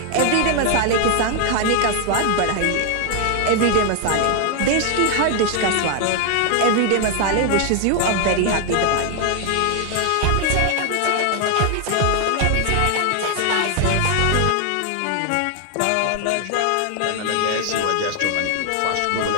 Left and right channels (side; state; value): both; different; correlation 0.00